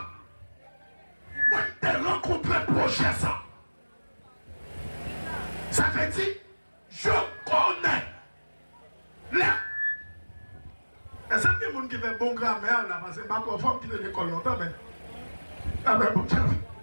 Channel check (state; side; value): inverted; both; correlation -1.00